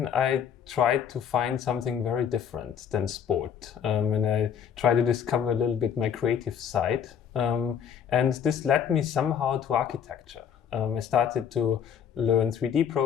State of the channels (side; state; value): right; quieter; 8.1 dB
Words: I tried to find something very different than sport. And I tried to discover a little bit my creative side. And this led me somehow to architecture. I started to learn 3D